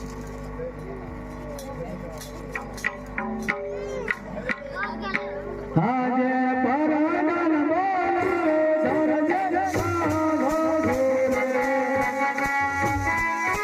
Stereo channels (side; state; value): both; identical; correlation 1.00